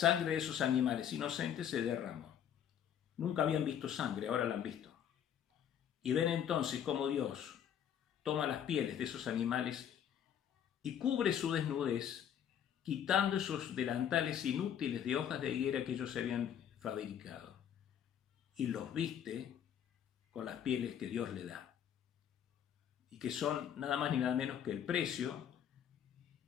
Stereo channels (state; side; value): quieter; right; 9.3 dB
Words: de esos animales inocentes se derramó. Nunca habían visto sangre, ahora la han visto. Y ven entonces cómo Dios toma las pieles de esos animales y cubre su desnudez, quitando esos delantales inútiles de hojas de higuera que ellos se habían fabricado. Y los viste con las pieles que Dios le da. Y que son nada más ni nada menos que el precio